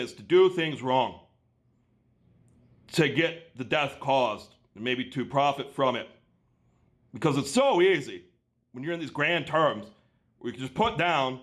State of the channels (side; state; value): both; identical; correlation 1.00